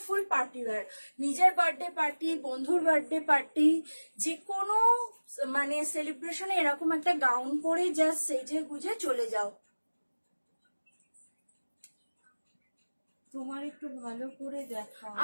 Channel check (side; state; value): both; inverted; correlation -1.00